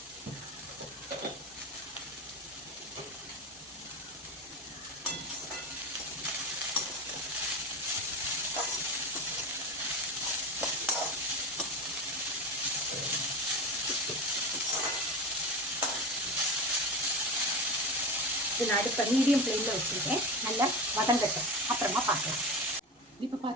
நான் அடுப்பை மீடியம் ஃப்ளேமில் வச்சுருக்கேன். நல்லா வதங்கட்டும், அப்புறமா பார்க்கலாம். இப்போ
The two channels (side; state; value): both; normal; correlation 0.25